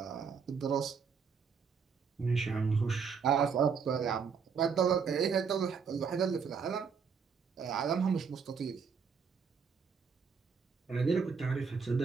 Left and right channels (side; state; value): left; quieter; 6.0 dB